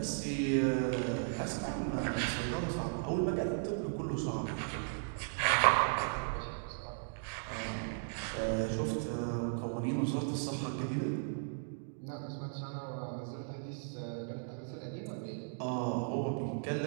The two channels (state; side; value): silent; left; digital silence